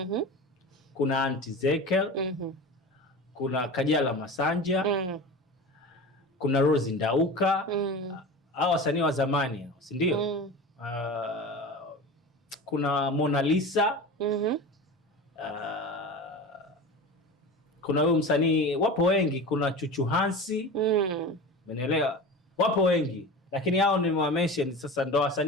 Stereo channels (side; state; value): both; normal; correlation 0.31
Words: kuna Aunty Zekel, kuna Kajala Masanja, kuna Rose Ndauka, hao wasanii wa zamani, si ndio? Kuna Mona Lisa, kuna huyo msanii, wapo wengi, kuna Chuchu Hansi, umeelewa? Wapo wengi. Lakini hao ni mention sasa, ndo